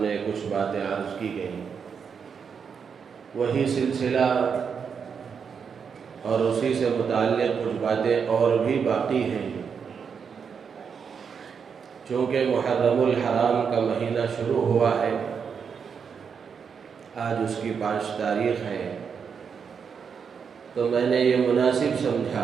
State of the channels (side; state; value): left; quieter; 6.5 dB